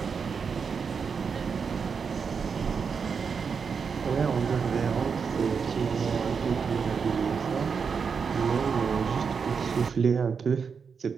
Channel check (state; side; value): quieter; left; 5.9 dB